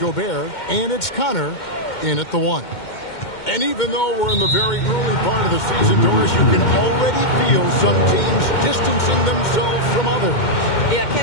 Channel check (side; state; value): right; late; 2.1 ms